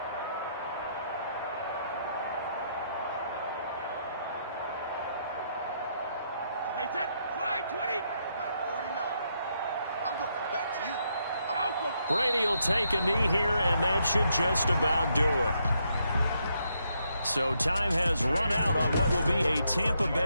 Brady will take a knee here, and that should just about do it. So time has run out on what will be a Tampa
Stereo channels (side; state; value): both; inverted; correlation -0.77